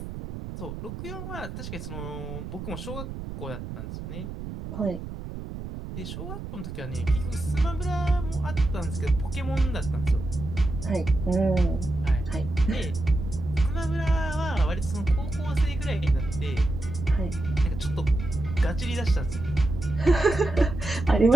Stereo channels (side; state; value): right; noise; rumble, 9 dB below the sound